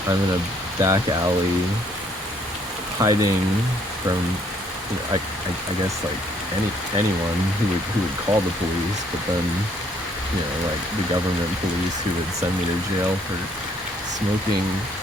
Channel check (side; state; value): both; normal; correlation 0.65